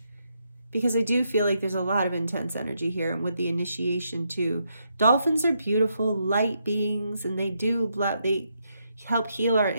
Because I do feel like there's a lot of intense energy here, and with the initiation too. Dolphins are beautiful, light beings, and they help heal our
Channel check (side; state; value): both; inverted; correlation -0.79